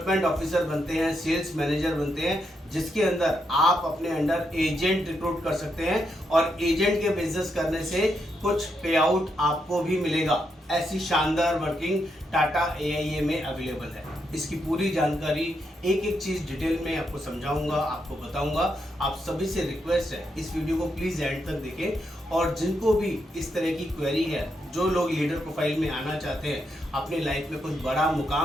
ऑफिसर बनते हैं, सेल्स मैनेजर बनते हैं, जिसके अंदर आप अपने अंडर एजेंट रिक्रूट कर सकते हैं और एजेंट के बिजनेस करने से कुछ पे आउट आपको भी मिलेगा। ऐसी शानदार वर्किंग टाटा AIA में अवेलेबल है। इसकी पूरी जानकारी एक एक चीज़ डिटेल में आपको समझाऊंगा, आपको बताऊंगा। आप सभी से रिक्वेस्ट है, इस वीडियो को प्लीज़ एंड तक देखें और जिनको भी इस तरह की क्वेरी है, जो लोग लीडर प्रोफाइल में आना चाहते हैं, अपनी लाइफ में कुछ बड़ा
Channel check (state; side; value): normal; both; correlation 0.81